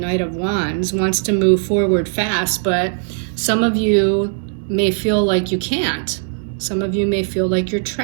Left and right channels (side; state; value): left; silent; digital silence